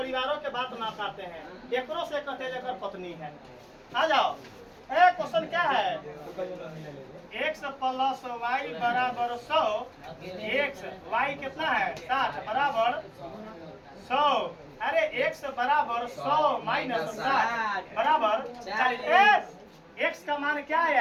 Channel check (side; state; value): both; identical; correlation 1.00